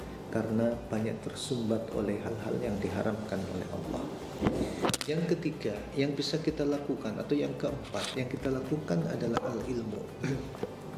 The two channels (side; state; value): both; identical; correlation 1.00